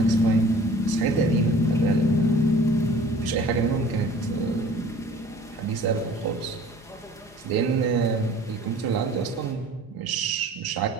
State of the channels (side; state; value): both; normal; correlation 0.49